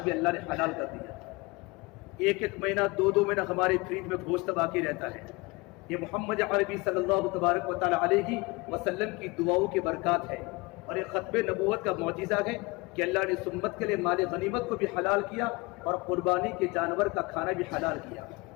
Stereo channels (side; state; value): right; quieter; 24.9 dB